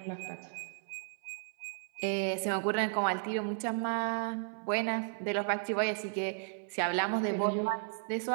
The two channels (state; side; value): silent; left; 55 dB below the other